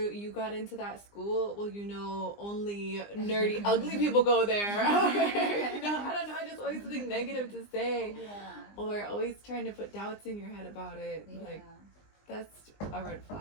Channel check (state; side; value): late; right; 20 ms